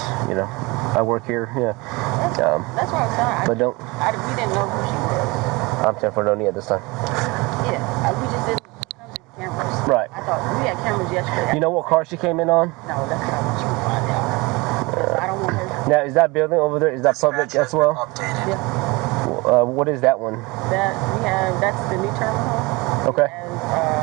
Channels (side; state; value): left; quieter; 24.5 dB